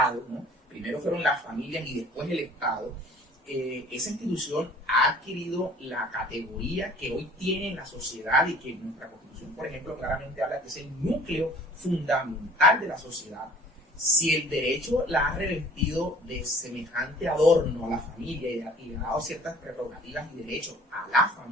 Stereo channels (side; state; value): both; normal; correlation 0.51